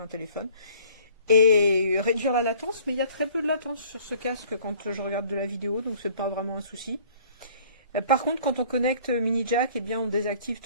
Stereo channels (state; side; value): inverted; both; correlation -0.54